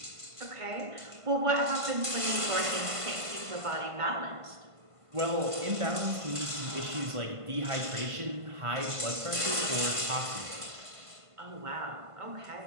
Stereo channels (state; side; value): late; left; 1.5 ms